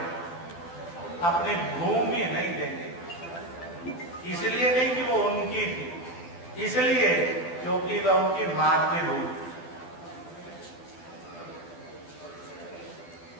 अपनी भूमि नहीं देंगे। इसलिए नहीं कि वो उनकी थी, इसलिए क्योंकि वह उनकी मातृभूमि।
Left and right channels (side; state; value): right; late; 12 ms